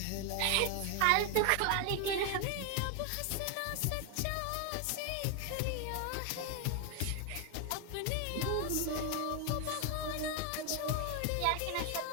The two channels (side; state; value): both; different; correlation 0.01